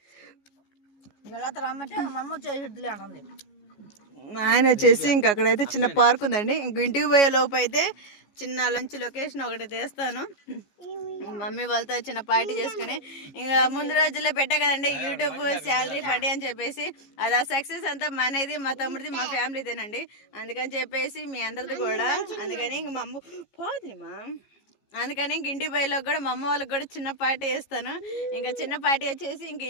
ఆయన వచ్చేసి ఇంక అక్కడైతే చిన్న పార్క్ ఉందండి. ఇంక ఇంటికి పోయే లోపు అయితే చిన్న లంచ్ లొకేషన్ ఒకటి తీస్తాను. మమ్మీ వాళ్ళతో చిన్న పార్టీ చేసుకుని ఇంకా ముందు రోజుల్లో పెట్టా కదండి యూట్యూబ్ శాలరీ పార్టీ అని చెప్పేసి. అది ఆ సక్సెస్ అంతా మనది, మా తమ్ముడిది, మా ఫ్యామిలీదేనండి. అందుకని చెప్పేసి మీ అందరిది కూడా. అందుకని ఇంక మా అమ్మ పోదుమా, అందుకని ఇంక ఇంటి బయలోకి కూడా మా అమ్మ వాళ్ళకి కూడా చిన్న పార్టీ చేస్తాను. ఇంకా చిన్న పార్టీ వచ్చేసి ఇంక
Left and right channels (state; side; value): late; right; 15 ms